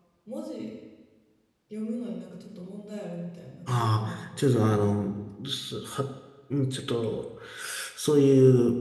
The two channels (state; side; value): identical; both; correlation 1.00